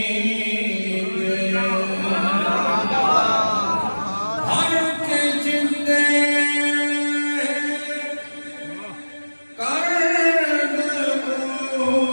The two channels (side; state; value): both; inverted; correlation -1.00